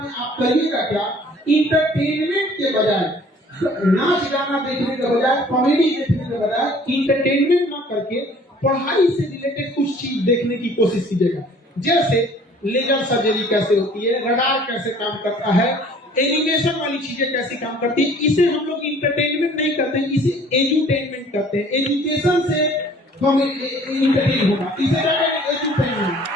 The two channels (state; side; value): normal; both; correlation 0.53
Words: आप करिएगा क्या, इंटरटेनमेंट के बजाय, नाच गाना देखने के बजाय, कॉमेडी देखने के बजाय इंटरटेनमेंट ना करके पढ़ाई से रिलेटेड कुछ चीज देखने की कोशिश कीजिएगा। जैसे लेजर सर्जरी कैसे होती है, रडार कैसे काम करता है, एनिमेशन वाली चीजें कैसे काम करती है। इसे हम लोग इंटरटेनमेंट नहीं करते हैं, इसे एजुटेनमेंट करते हैं। एजुकेशन से हम इंटरटेन होगा, इसे एजुटेनमेंट।